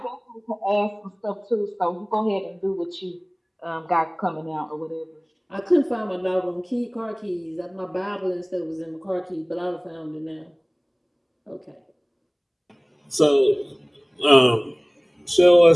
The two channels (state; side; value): identical; both; correlation 1.00